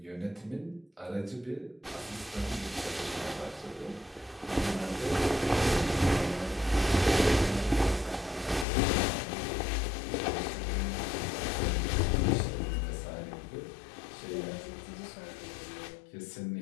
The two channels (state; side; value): drops out; right; at 8.7 s